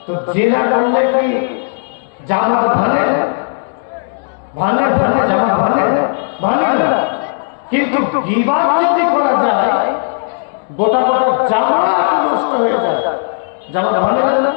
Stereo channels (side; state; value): right; silent; digital silence